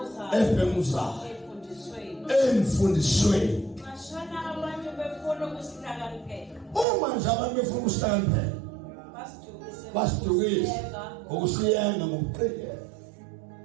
Ebhenguzayo. Emfundisweni. Mashana abantu befuna ukusihlakaniphela. Uma nje abantu befuna ukusihlakaniphela. Basidukise. Ngokusiyenga ngokuqikelela.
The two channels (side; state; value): left; drops out; at 6.9 s